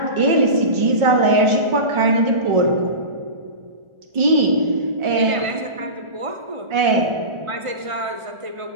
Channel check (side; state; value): left; late; 1.4 ms